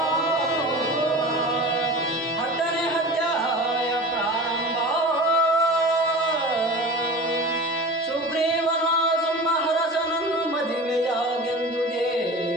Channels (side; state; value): both; normal; correlation 0.34